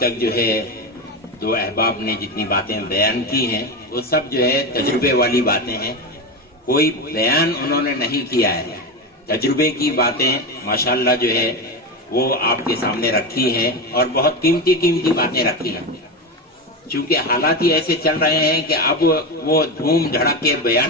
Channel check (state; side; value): normal; both; correlation 0.17